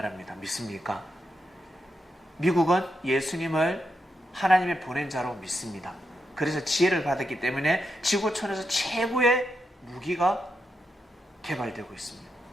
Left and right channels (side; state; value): both; normal; correlation 0.84